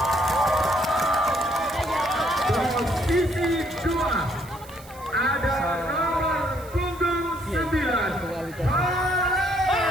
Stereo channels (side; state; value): right; noise; hiss, 21 dB below the sound